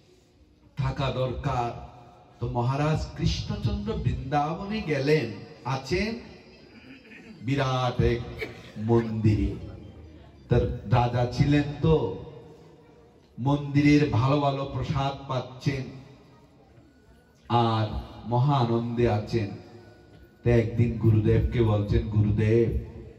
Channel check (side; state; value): both; identical; correlation 1.00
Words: থাকা দরকার। তো মহারাজ কৃষ্ণচন্দ্র বৃন্দাবনে গেলেন, আছেন বিরাট এক মন্দিরে। তার রাজা ছিলেন তো, মন্দিরের ভালো ভালো প্রসাদ পাচ্ছেন আর মহা আনন্দে আছেন। তো একদিন গুরুদেবকে বলছেন, গুরুদেব